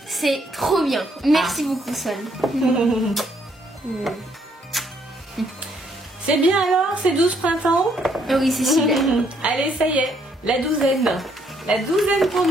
C'est trop bien. Merci beaucoup, Swan. C'est bien alors, c'est 12 printemps? Ah oui, c'est super. Allez, ça y est, la douzaine. La douzaine pour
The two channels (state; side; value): normal; both; correlation 0.69